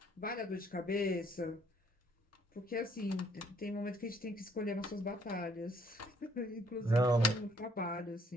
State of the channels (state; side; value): normal; both; correlation 0.64